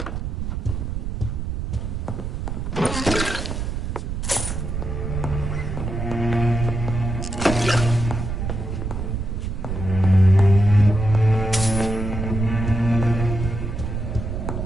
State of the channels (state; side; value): noise; right; rumble, 3 dB below the sound